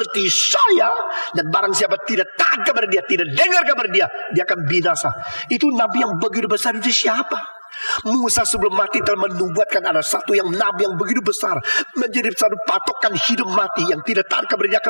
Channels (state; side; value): inverted; both; correlation -1.00